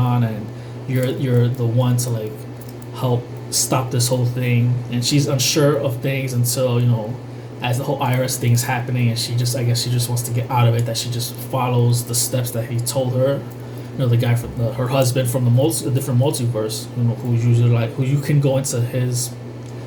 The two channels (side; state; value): both; identical; correlation 1.00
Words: and you're the one to help stop this whole thing. And she's unsure of things until as the whole IRS thing is happening, and I guess she just wants to get out of it. That she just follows the steps that he told her. The guy from her husband from the different multiverse, who's usually who you can go into